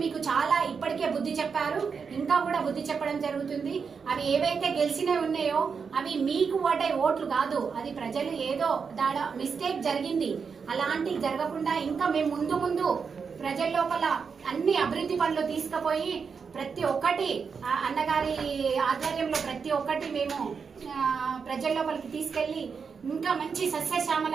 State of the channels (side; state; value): left; quieter; 5.8 dB